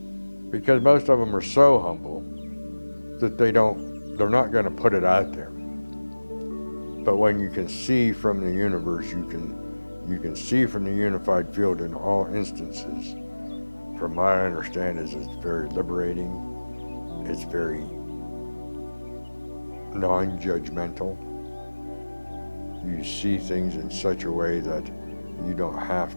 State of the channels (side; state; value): both; inverted; correlation -1.00